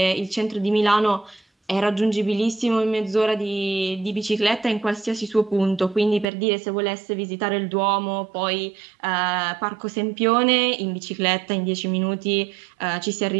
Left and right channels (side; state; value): left; drops out; at 6.2 s